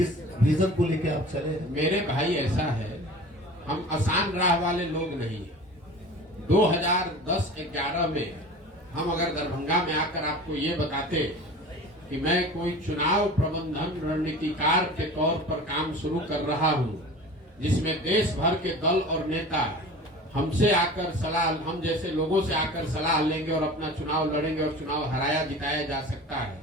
विजन को लेके आप चले हैं? मेरे भाई ऐसा है, हम आसान राह वाले लोग नहीं हैं। 2010-11 में हम अगर दरभंगा में आकर आपको ये बताते कि मैं कोई चुनाव प्रबंधन रणनीतिकार के तौर पर काम शुरू कर रहा हूं, जिसमें देश भर के दल और नेता हमसे आकर सलाह, हम जैसे लोगों से आकर सलाह लेंगे और अपना चुनाव लड़ेंगे और चुनाव हराया जिताया जा सकता है,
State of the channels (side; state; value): both; normal; correlation 0.38